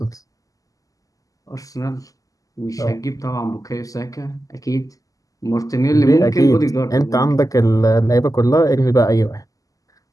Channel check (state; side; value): late; right; 0.17 ms